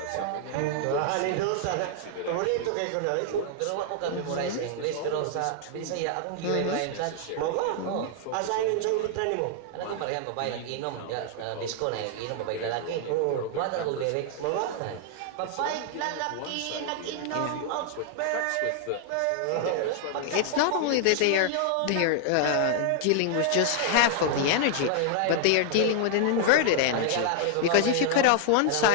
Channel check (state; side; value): different; both; correlation 0.00